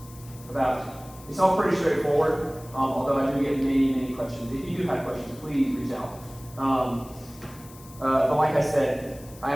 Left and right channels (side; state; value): left; noise; hiss, 21 dB below the sound